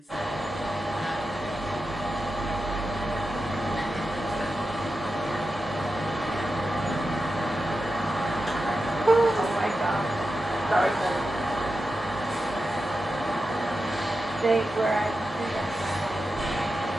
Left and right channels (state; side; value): normal; both; correlation 0.90